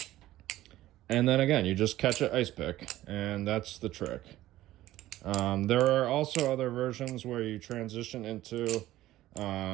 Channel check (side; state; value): left; quieter; 15.2 dB